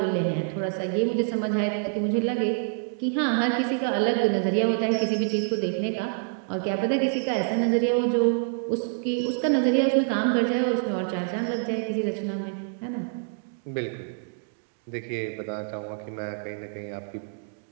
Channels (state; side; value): silent; left; digital silence